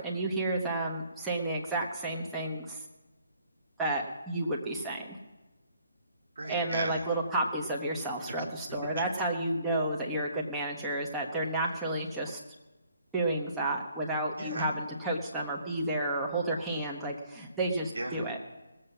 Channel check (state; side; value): inverted; both; correlation -0.59